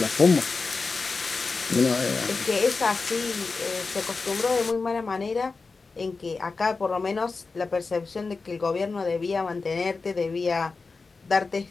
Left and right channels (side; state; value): right; quieter; 4.2 dB